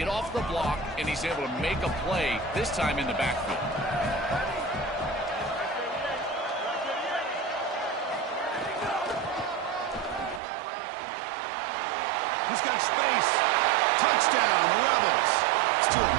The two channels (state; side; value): drops out; left; at 10.4 s